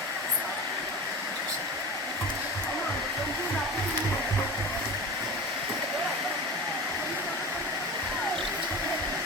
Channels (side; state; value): both; normal; correlation 0.31